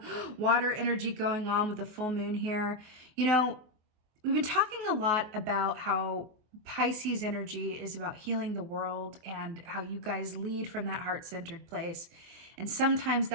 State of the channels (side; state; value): left; late; 24 ms